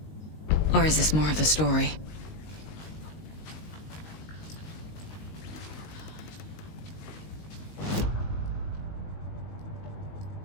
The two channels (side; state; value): right; late; 19 ms